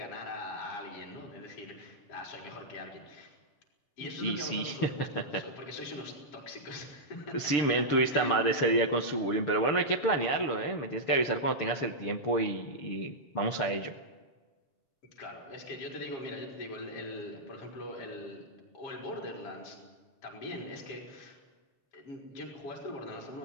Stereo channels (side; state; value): right; late; 6.8 ms